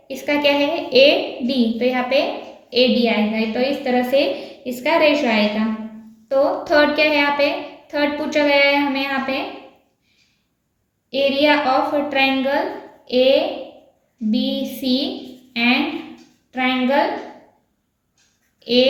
इसका क्या है? ए डी, तो यहाँ पे ए डी आएगा। तो इस तरह से इसका रेशो आएगा। तो थर्ड क्या है? यहाँ पे थर्ड पूछा गया है हमें यहाँ पे area of triangle A B C and triangle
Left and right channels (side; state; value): both; identical; correlation 1.00